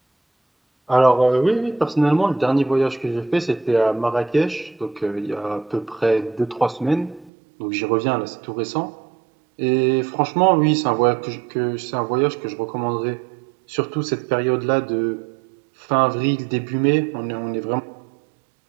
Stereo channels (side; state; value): left; drops out; at 7.3 s